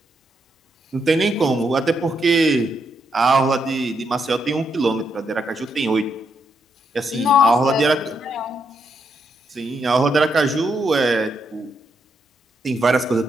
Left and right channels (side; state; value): both; normal; correlation 0.79